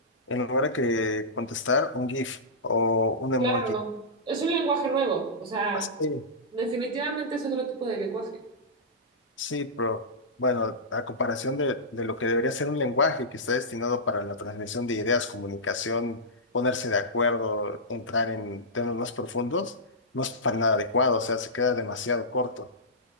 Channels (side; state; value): both; normal; correlation -0.13